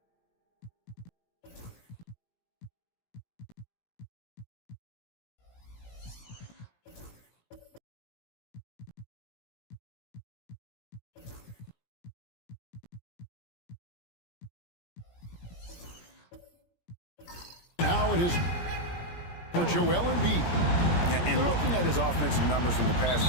How it is for Joel Embiid. And looking at his offensive numbers from the past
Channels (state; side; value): late; right; 17 ms